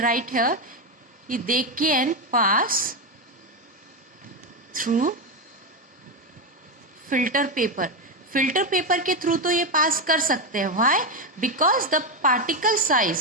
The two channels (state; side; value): normal; both; correlation 0.10